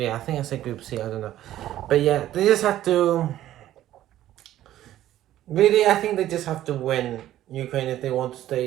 I think I said Group C. I don't know, but yeah, they just have to. Really, I think they just have to win Ukraine if they want to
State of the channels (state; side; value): quieter; left; 13.2 dB